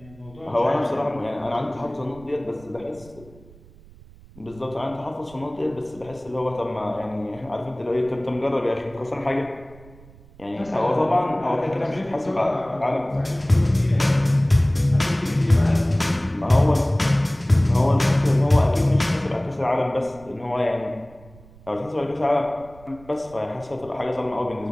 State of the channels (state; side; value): noise; right; rumble, 23 dB below the sound